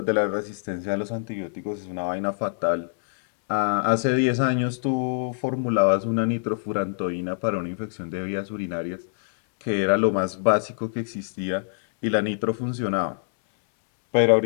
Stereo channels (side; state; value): right; silent; 62 dB below the other